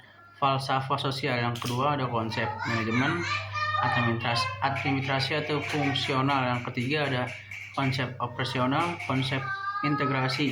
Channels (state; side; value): identical; both; correlation 1.00